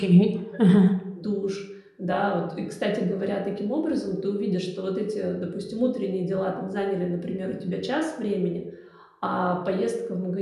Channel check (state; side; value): identical; both; correlation 1.00